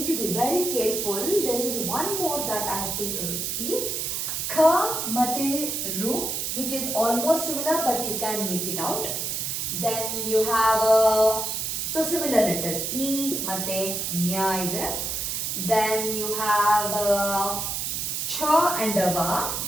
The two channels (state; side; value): noise; right; hiss, 2 dB below the sound